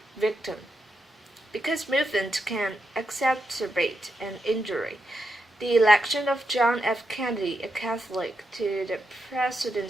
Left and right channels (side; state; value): both; normal; correlation 0.84